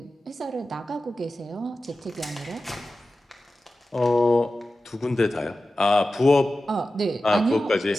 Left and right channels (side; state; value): both; normal; correlation 0.94